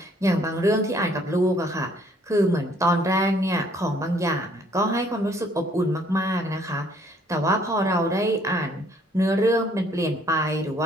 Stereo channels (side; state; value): both; normal; correlation 0.62